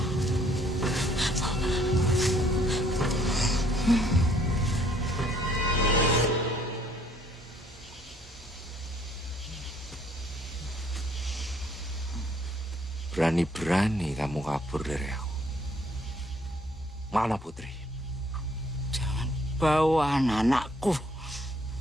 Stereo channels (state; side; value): normal; both; correlation 0.63